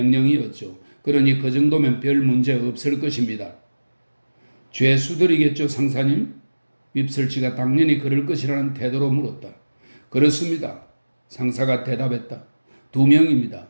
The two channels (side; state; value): both; inverted; correlation -1.00